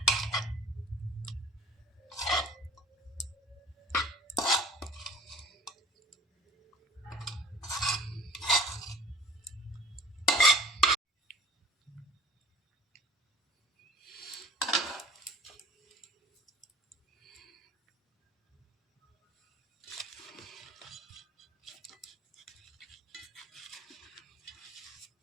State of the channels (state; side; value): normal; both; correlation 0.47